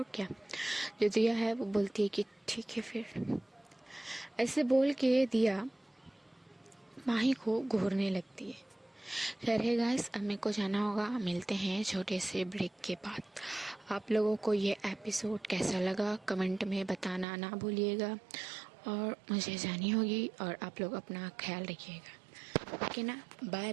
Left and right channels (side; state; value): left; drops out; at 17.2 s